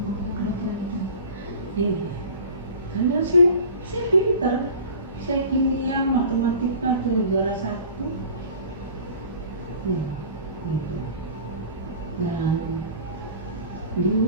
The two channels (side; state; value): both; inverted; correlation -0.40